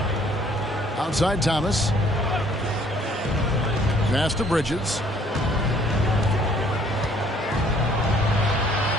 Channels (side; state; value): both; normal; correlation 0.60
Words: Outside Thomas. Pass to Bridges.